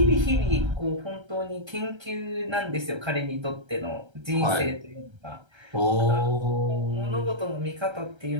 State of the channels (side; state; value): left; late; 1.3 ms